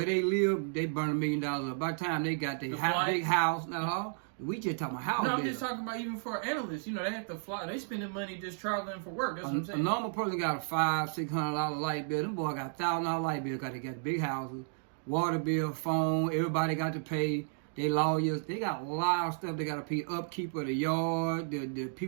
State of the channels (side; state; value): left; silent; digital silence